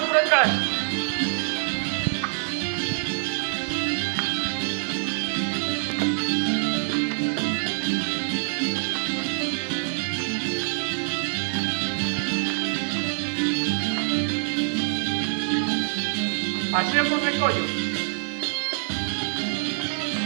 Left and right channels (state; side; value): silent; left; digital silence